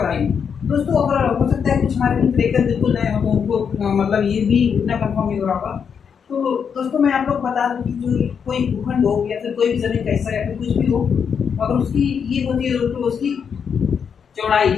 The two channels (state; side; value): quieter; right; 6.9 dB